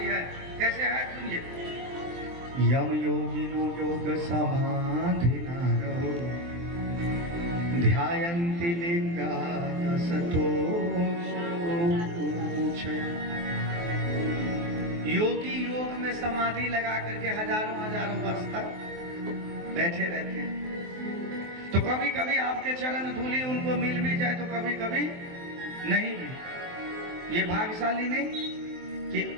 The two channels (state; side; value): late; left; 23 ms